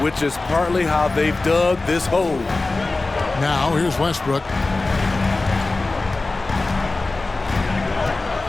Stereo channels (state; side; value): quieter; right; 3.3 dB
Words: which is partly how they've dug this hole. Now, here's Westbrook.